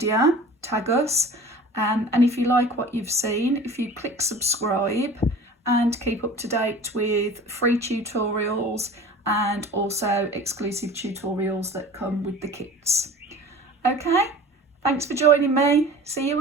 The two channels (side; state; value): both; normal; correlation 0.41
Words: tag us, and if you like what you've seen, if you click subscribe and keep up to date with free tutorials and also exclusive tutorials that come with the kits. Okay, thanks for joining me. See you